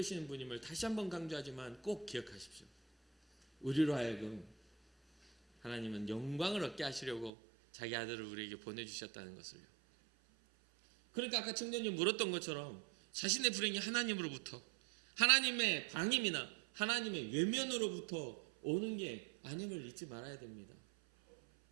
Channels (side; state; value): left; drops out; at 7.3 s